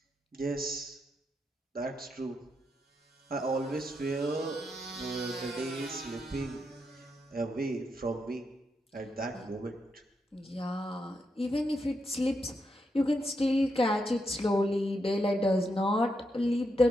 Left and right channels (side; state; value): both; normal; correlation 0.82